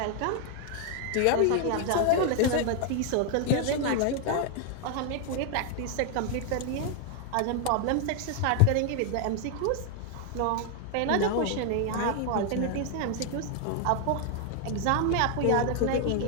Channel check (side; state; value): both; different; correlation 0.00